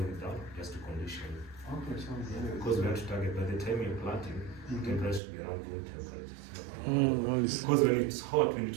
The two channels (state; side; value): drops out; left; at 5.2 s